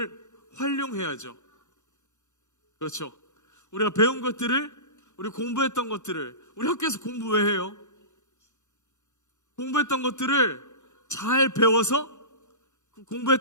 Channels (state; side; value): late; right; 0.84 ms